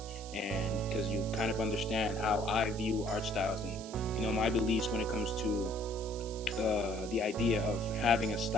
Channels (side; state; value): right; noise; hiss, 15 dB below the sound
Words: and because you kind of understand how I view art styles and my beliefs when it comes to the idea of having a